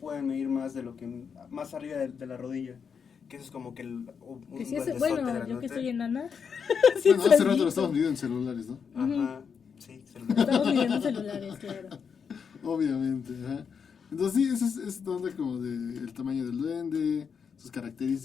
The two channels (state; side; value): quieter; right; 6.5 dB